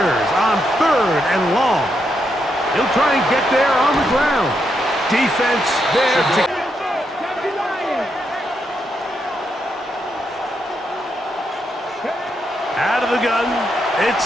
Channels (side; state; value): both; normal; correlation 0.81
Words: on 3rd and long. He'll try and get there on the ground. Defense there to... Out of the gun, it's